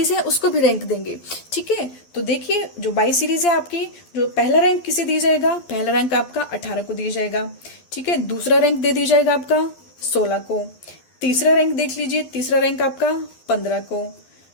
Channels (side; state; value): right; late; 12 ms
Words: है उसको भी रैंक देंगे, ठीक है। तो देखिए जो वाई सीरीज है आपकी, जो पहला रैंक किसे दिया जाएगा, पहला रैंक आपका 18 को दिया जाएगा, ठीक है। दूसरा रैंक दे दिया जाएगा आपका 16 को। तीसरा रैंक देख लीजिए, तीसरा रैंक आपका 15 को।